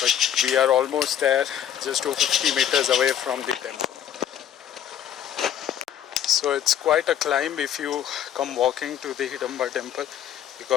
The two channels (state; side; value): quieter; right; 10.1 dB